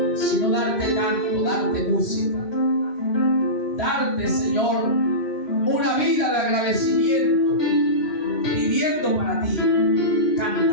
sino darte canto, darte música. Darte, Señor, una vida de agradecimiento, viviendo para ti,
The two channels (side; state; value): right; late; 3.1 ms